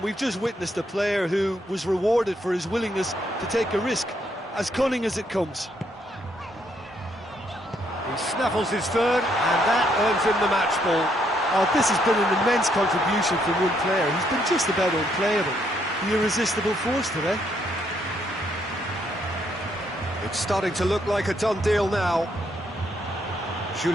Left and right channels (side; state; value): both; normal; correlation 0.73